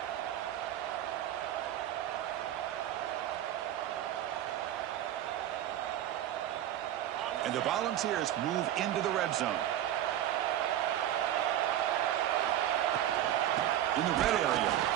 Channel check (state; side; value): quieter; left; 12.0 dB